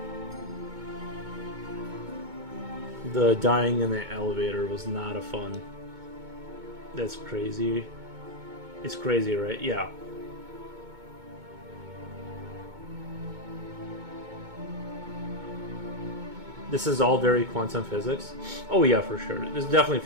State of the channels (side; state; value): left; late; 2.2 ms